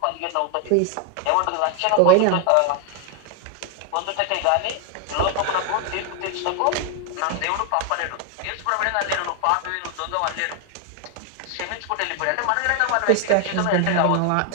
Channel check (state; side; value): different; both; correlation 0.01